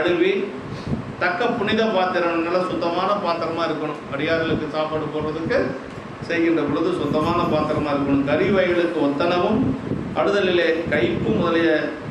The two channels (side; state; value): both; identical; correlation 1.00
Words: தக்க புனித பாத்திரம், நல்லா சுத்தமான பாத்திரமாக இருக்கணும். அடியார்களுக்கு சாப்பாடு போடுறதுக்கு செய்கின்ற பொழுது சுத்தமான பாத்திரமாக இருக்கணும். கறி வகைகளுக்கு ஒத்தனவும் அடுதலிலே கைப்பு முதலிய